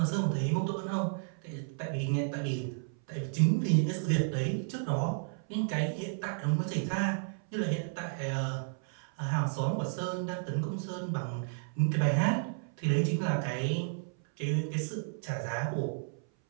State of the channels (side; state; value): left; silent; 56 dB below the other